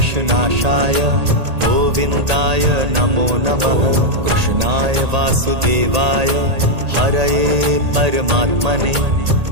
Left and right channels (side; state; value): left; late; 1.8 ms